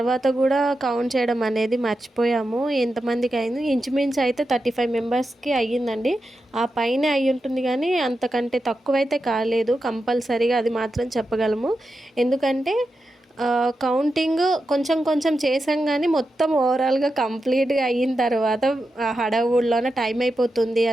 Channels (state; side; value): normal; both; correlation 0.89